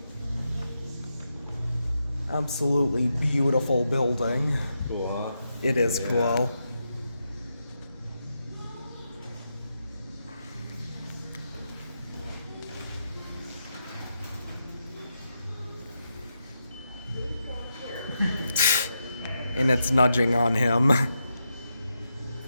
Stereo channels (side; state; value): both; inverted; correlation -0.85